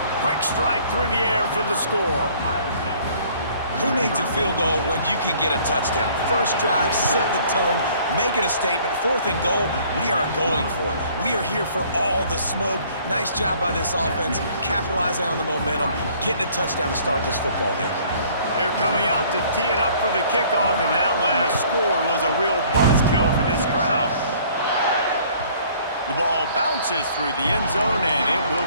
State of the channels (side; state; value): both; inverted; correlation -0.56